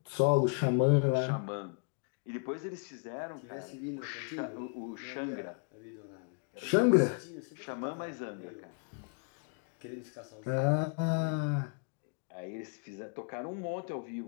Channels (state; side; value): quieter; right; 37.4 dB